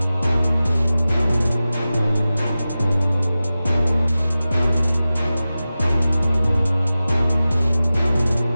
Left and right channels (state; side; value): inverted; both; correlation -0.95